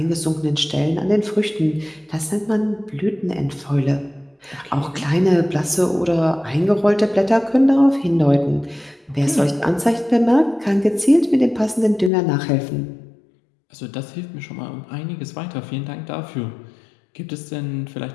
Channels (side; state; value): right; drops out; at 12.1 s